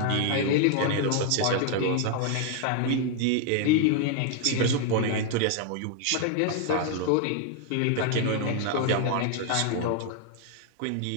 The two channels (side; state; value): both; different; correlation 0.00